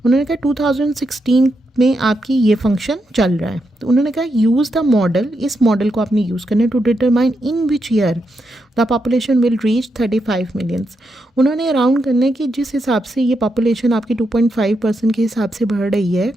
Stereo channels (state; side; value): normal; both; correlation 0.83